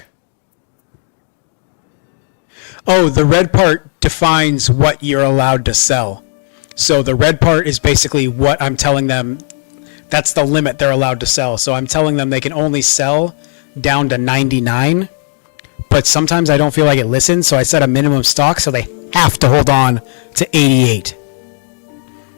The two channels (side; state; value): right; silent; 58 dB below the other